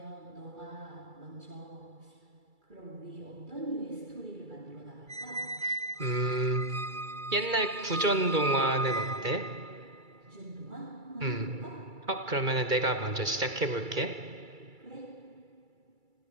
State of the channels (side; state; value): left; late; 2.3 ms